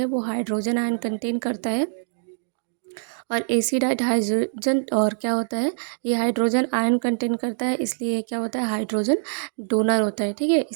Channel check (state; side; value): silent; left; digital silence